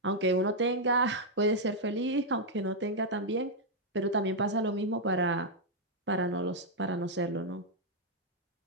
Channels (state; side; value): normal; both; correlation -0.03